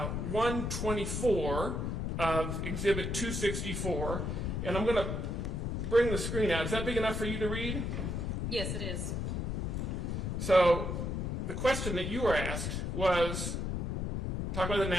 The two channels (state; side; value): noise; left; rumble, 1 dB below the sound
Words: of Exhibit 264, and I'm going to bring the screen out. Is that big enough for you to read? Yes, it is. So the question that you were asked was, talk about the